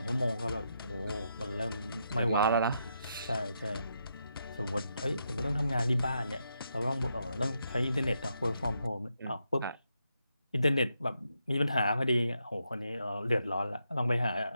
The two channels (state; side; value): inverted; both; correlation -0.81